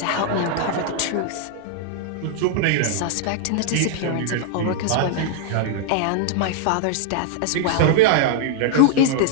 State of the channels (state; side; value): different; both; correlation -0.01